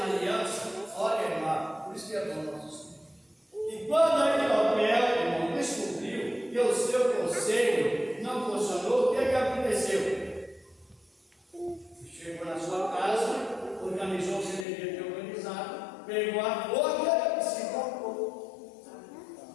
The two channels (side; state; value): right; drops out; at 14.7 s